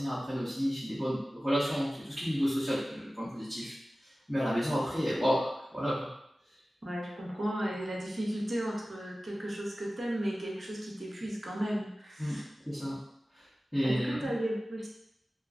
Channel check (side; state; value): both; normal; correlation 0.96